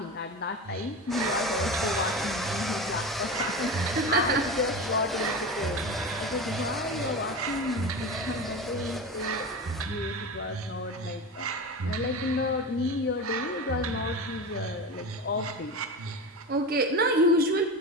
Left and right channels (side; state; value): both; normal; correlation 0.26